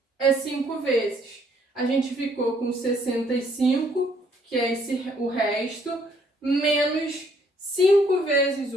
é 5 vezes. A gente ficou com 65, que é o resto, menos 5 vezes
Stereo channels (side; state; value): both; normal; correlation 0.66